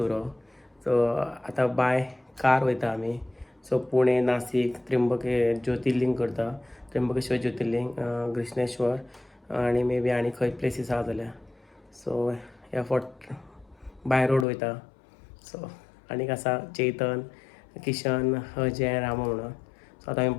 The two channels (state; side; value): drops out; right; at 14.5 s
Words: सो आता बाय कार वयता आम्ही. सो पुणे, नाशिक, ज्योतिर्लिंग करता. त्र्यंबकेश्वर ज्योतिर्लिंग, कृष्णेश्वर आणि मे बी आणि खंय प्लेसीस आहा जाल्यार. सो ह्या फावट बाय रोड वयता. सो आनीक आसा चेतन, किशन, अजय, रामा म्हणून. सो आतां आमी